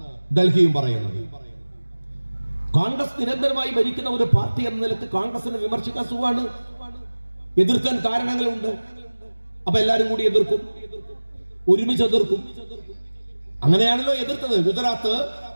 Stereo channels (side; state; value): both; inverted; correlation -1.00